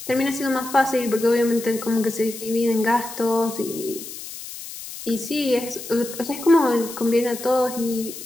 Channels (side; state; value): left; noise; hiss, 11 dB below the sound